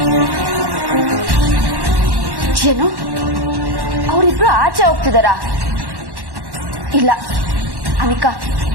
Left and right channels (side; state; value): left; late; 1.1 ms